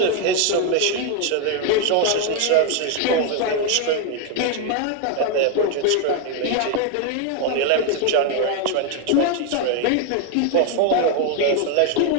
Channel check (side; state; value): both; different; correlation 0.01